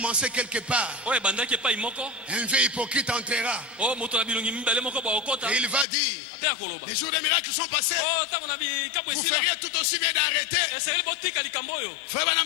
quelque part, Oyo ebandaki epai moko. un vieux hypocrite entrera Oyo moto na bilongi mibale moko baokota. et il va dire, Ape akoloba. les jours des miracles sont passés, Oh, ntango na bikapo vous esila. feriez tout aussi bien d'arrêter. Esengeli botika likambo oyo. Frère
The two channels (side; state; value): right; drops out; at 5.9 s